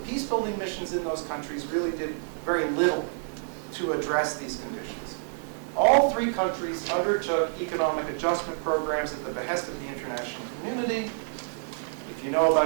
peace-building missions in those countries really did very little to address these conditions. All three countries undertook economic adjustment programs at the behest of the international community. If you know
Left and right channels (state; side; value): silent; left; digital silence